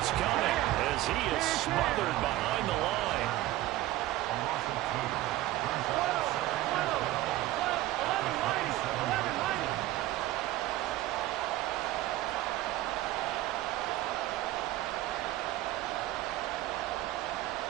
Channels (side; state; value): left; quieter; 15.9 dB